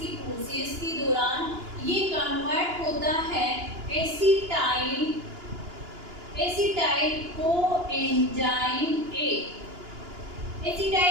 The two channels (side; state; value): left; late; 2.9 ms